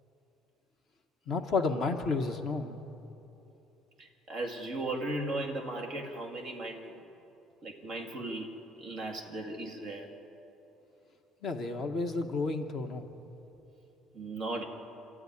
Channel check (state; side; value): normal; both; correlation 0.62